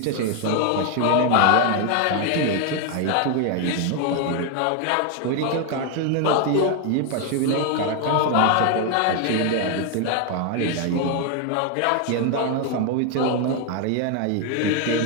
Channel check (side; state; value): both; different; correlation 0.01